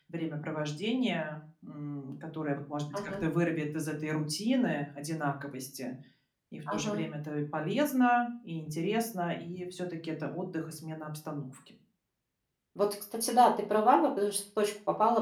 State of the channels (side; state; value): both; identical; correlation 1.00